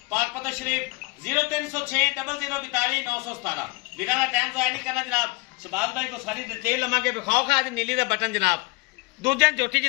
पाक पतन शरीफ 0306 0042 917। वीरा का टाइम जाया नहीं करना जनाब। शबाज भाई को सारी डिटेल लवांगे विखाओ खा आज नीली का बटन जनाब। दूजे झोटी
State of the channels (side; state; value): right; quieter; 24.0 dB